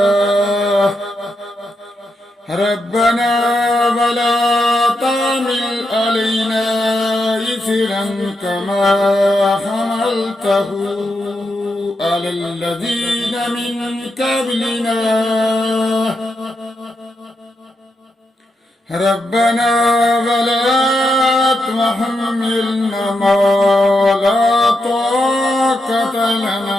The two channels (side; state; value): both; normal; correlation 0.84